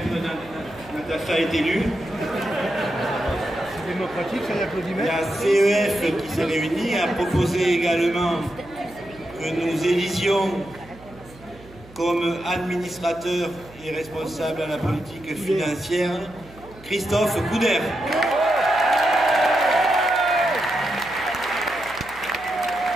Natacha est élue. C'est démocratique, c'est l'applaudimètre. La CEF qui s'est réunie a proposé également que nous élisions comme administrateur et responsable à la politique financière Christophe Couder.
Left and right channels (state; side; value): noise; right; hum, 22 dB below the sound